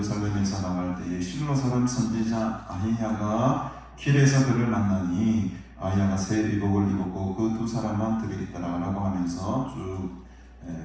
나갈 때에 실로 사람 선지자 아히야가 길에서 그를 만나니 아히야가 새 의복을 입었고 그 두 사람만 들어있더라 라고 하면서 쭉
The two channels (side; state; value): both; identical; correlation 1.00